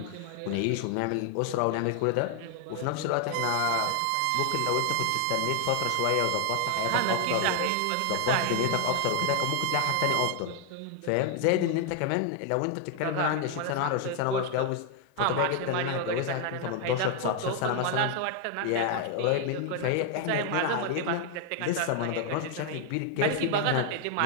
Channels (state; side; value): different; both; correlation 0.00